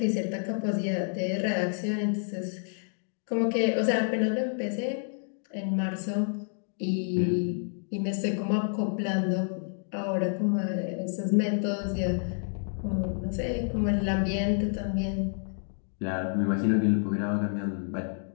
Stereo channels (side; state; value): right; silent; 58 dB below the other